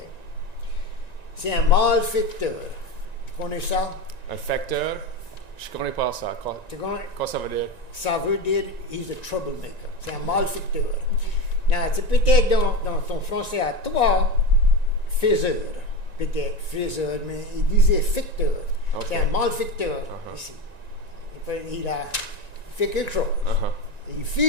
C'est un malfaiteur. Tu connais ça? Un facteur? Je connais pas ça. Quoi ça veut dire? Ça veut dire he's a troublemaker. C'est un malfaiteur. Now, c'est peut-être dans ton français à toi, faiseur. Peut-être faiseur, mais il disait ficteur. Okay. C'est un malfaiteur ici. Il a fait quelque chose. Il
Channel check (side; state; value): right; late; 1.9 ms